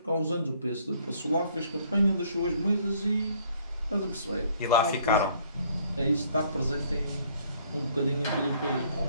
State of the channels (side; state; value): both; inverted; correlation -0.62